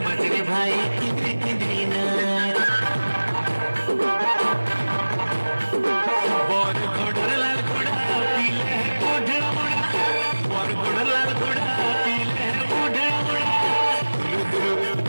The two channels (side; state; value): both; inverted; correlation -1.00